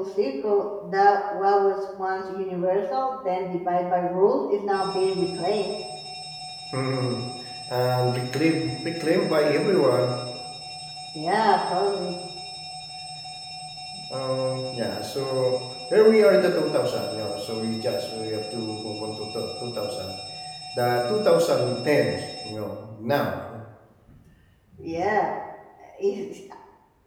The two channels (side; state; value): both; identical; correlation 1.00